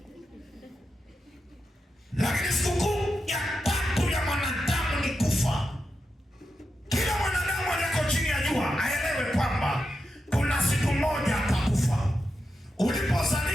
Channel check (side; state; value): both; normal; correlation 0.88